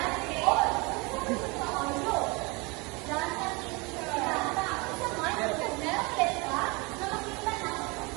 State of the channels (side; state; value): left; quieter; 27.5 dB